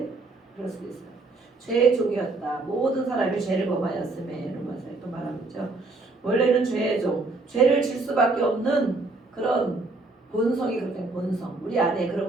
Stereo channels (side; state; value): left; quieter; 3.4 dB